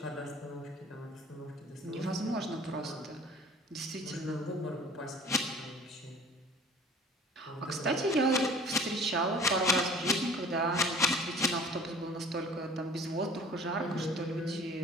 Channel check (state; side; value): normal; both; correlation 0.46